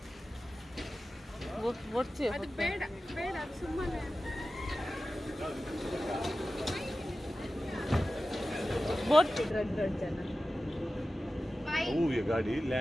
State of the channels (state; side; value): normal; both; correlation 0.95